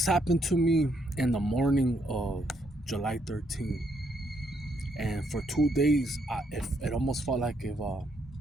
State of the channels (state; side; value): normal; both; correlation 0.74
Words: happened to me in the morning of July 13th. And for 2 days, it almost felt like a